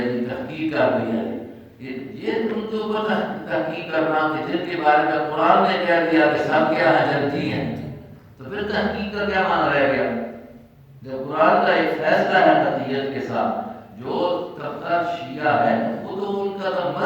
تحقیق کر دی ہے، یہ تم کے اوپر تحقیق کرنا کہ جن کے بارے میں قرآن نے کہہ دیا کہ سب کیا ہے جنتی ہیں، تو پھر تحقیق کا کیا معنی رہ گیا؟ جب قرآن کا ایک فیصلہ ہے قطعیت کے ساتھ، جو طبقہ شیعہ ہے وہ تو ان کا تو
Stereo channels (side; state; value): both; identical; correlation 1.00